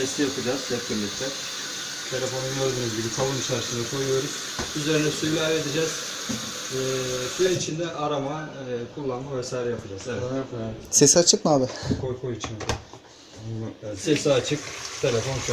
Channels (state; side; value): identical; both; correlation 1.00